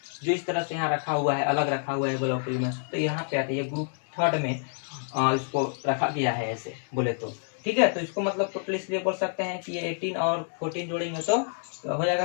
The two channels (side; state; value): right; silent; 59 dB below the other